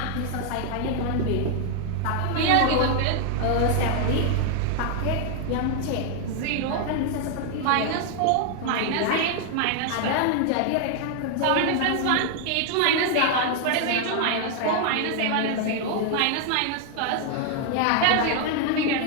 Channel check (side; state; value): both; different; correlation 0.00